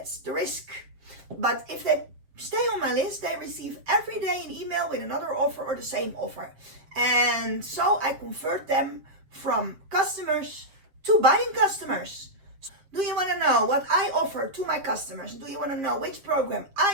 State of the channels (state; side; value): late; left; 7.5 ms